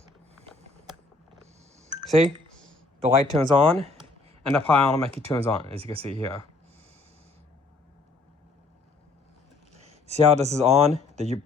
See, the light turns on, and the power automatically turns on, as you can see here. See how this is on?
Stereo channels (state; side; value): quieter; right; 3.5 dB